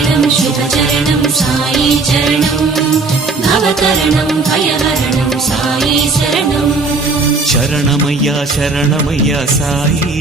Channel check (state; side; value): quieter; left; 3.9 dB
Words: శుభచరణం సాయి చరణం నవతరణం భయహరణం సాయి శరణం శరణమయ్యా శరణమయ్యా సాయి